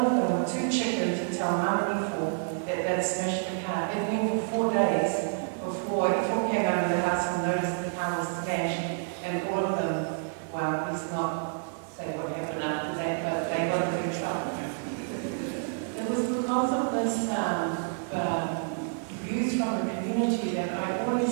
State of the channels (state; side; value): silent; left; digital silence